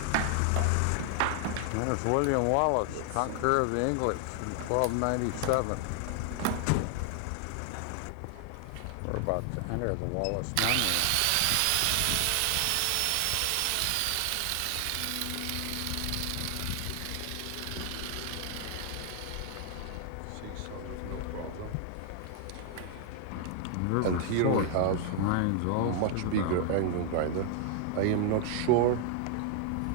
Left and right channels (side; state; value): both; different; correlation 0.00